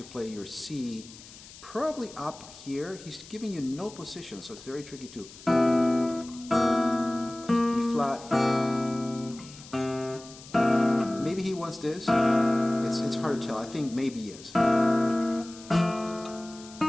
play your C, probably up here. He's giving you no position, so it's very tricky too. B flat. Maybe he wants this. It's hard to tell. I think maybe yes.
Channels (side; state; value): left; noise; hiss, 18 dB below the sound